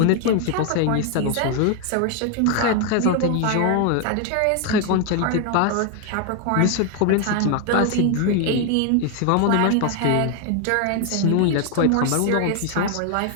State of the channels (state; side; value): different; both; correlation 0.01